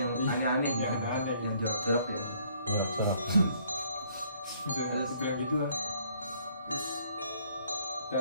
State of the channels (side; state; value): both; inverted; correlation -0.64